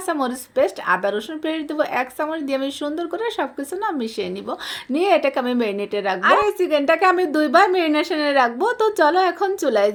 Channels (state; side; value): identical; both; correlation 1.00